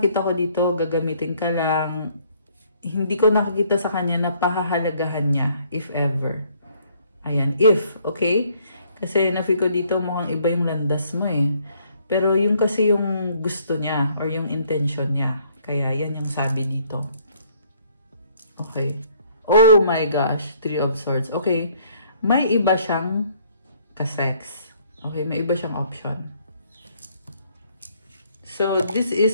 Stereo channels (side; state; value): both; inverted; correlation -0.64